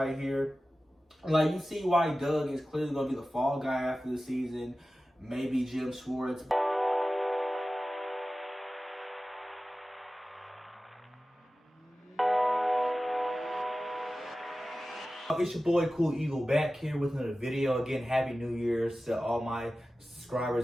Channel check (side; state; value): both; normal; correlation 0.95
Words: here, like you see why Doug is clearly going to be the fall guy after the season. Maybe Jim Schwartz. It's your boy Cool Eagle back here with another video. Again, Happy New Year's to all my